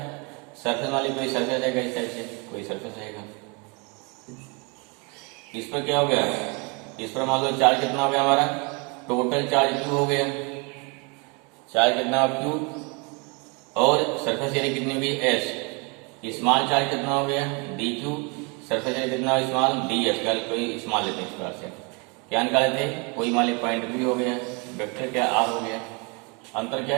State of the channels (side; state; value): left; quieter; 31.7 dB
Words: सरफेस वाली कोई सरफेस है इस साइड से, कोई सरफेस रहेगा, इस पर क्या हो गया, इस पर मान लो चार्ज कितना हो गया हमारा, टोटल चार्ज क्यू हो गया, चार्ज कितना क्यू, और सरफेस एरिया कितनी हो गई एस, स्मॉल चार्ज कितना हो गया डी क्यू, सरफेस एरिया कितना स्मॉल डी एस, कोई स्मॉल लेते हैं इस प्रकार से, क्या निकाले थे, कोई मान ली पॉइंट बी हो गया, वेक्टर क्या आर हो गया। अंतर क्या